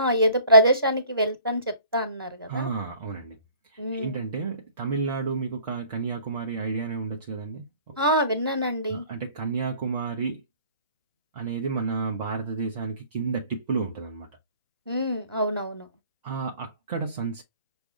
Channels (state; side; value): inverted; both; correlation -0.53